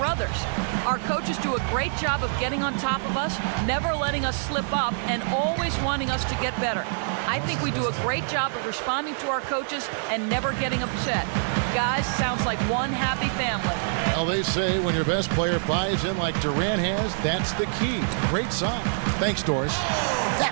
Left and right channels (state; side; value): silent; left; digital silence